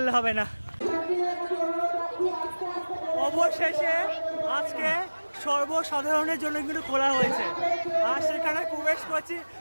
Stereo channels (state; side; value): inverted; both; correlation -1.00